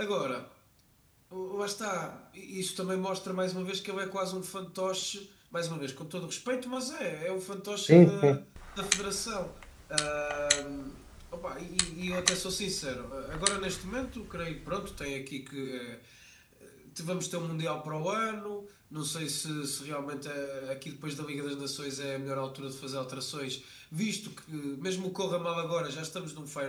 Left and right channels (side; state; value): both; identical; correlation 1.00